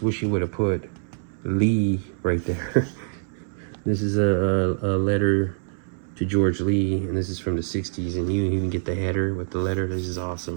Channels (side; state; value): left; silent; 62 dB below the other